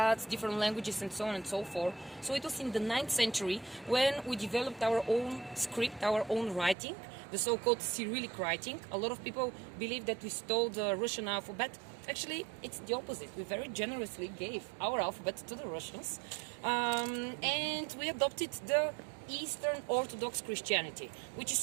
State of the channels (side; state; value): left; drops out; at 6.8 s